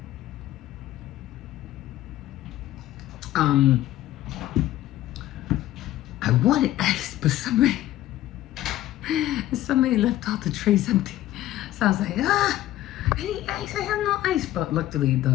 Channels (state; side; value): quieter; right; 14.2 dB